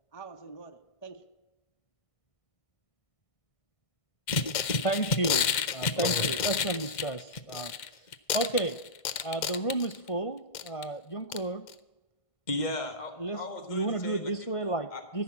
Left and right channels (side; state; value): right; late; 1.5 ms